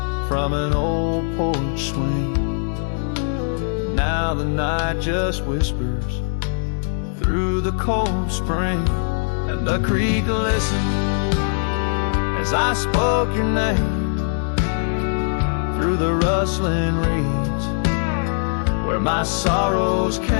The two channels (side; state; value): right; silent; digital silence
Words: from an old porch swing. Now the night just whispers through the cold spring, and the creek listened as I spoke your name through the rustling reeds where my sorrows